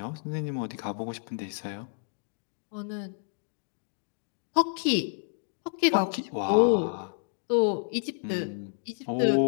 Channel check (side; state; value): right; silent; digital silence